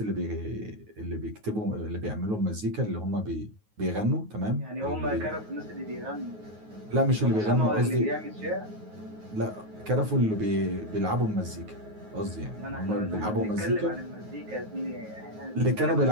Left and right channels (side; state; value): left; late; 9.4 ms